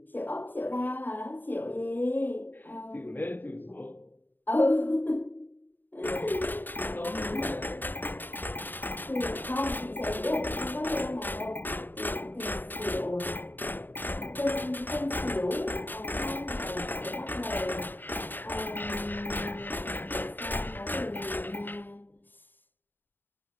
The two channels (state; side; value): late; right; 0.091 ms